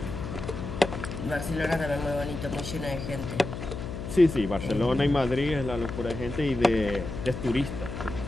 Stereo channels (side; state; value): left; noise; hum, 7 dB below the sound